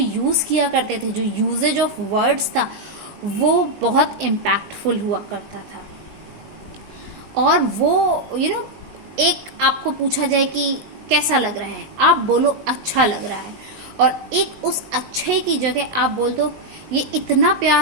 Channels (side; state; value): left; late; 19 ms